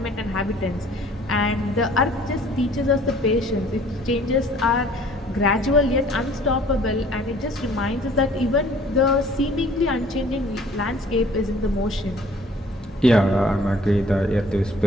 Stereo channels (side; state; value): both; normal; correlation 0.54